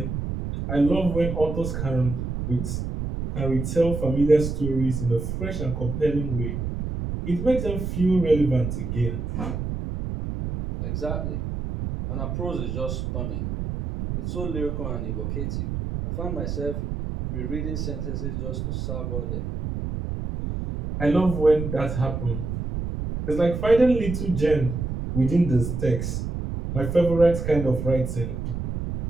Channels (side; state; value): right; noise; rumble, 4 dB below the sound